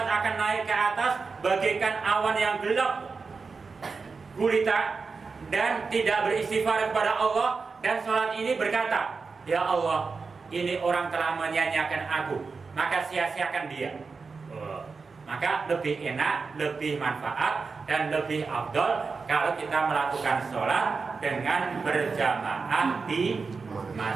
akan naik ke atas bagaikan awan yang gelap gulita dan tidak beristighfar kepada Allah. Dan sholat ini berkata, ya Allah, ini orang telah menyanyiakan aku, maka sia-siakan dia. Maka lebih enak, lebih manfaat, dan lebih afdol kalau kita melakukan sholat dengan berjamaah di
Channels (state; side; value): quieter; left; 4.7 dB